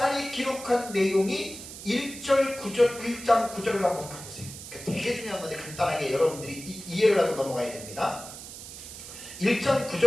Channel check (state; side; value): noise; right; hiss, 12 dB below the sound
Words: 기록한 내용이 1장 9절을 한번 가보세요. 되게 중요한 건데 간단하게 여러분들이 이해를 하고 넘어가야 됩니다. 1장